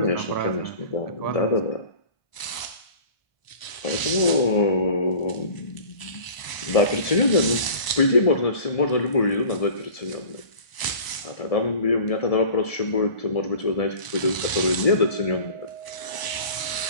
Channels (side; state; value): right; late; 1.0 ms